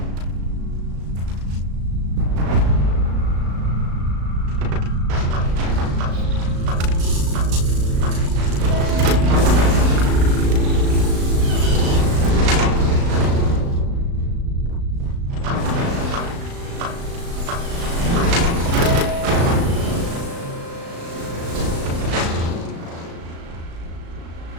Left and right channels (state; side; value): late; left; 36 ms